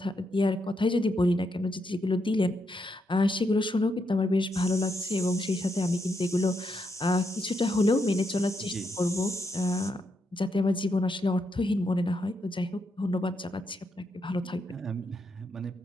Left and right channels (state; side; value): normal; both; correlation 0.80